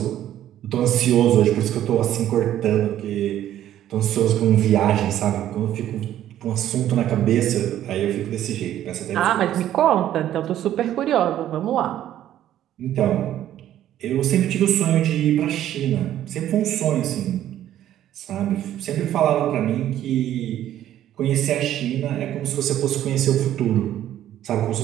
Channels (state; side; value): quieter; left; 12.0 dB